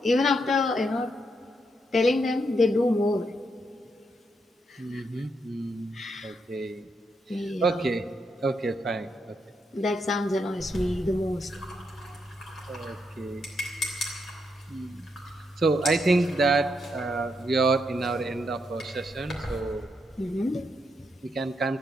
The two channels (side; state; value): both; normal; correlation 0.80